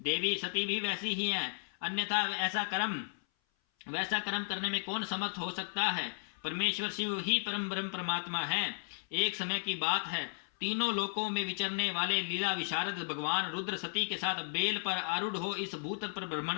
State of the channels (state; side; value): silent; right; 55 dB below the other